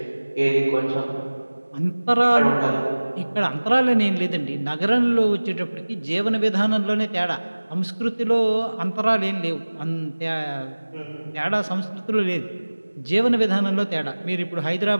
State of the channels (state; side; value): inverted; both; correlation -1.00